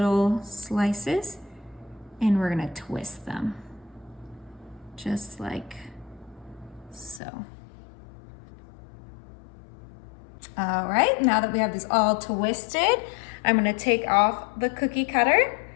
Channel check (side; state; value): right; drops out; at 7.2 s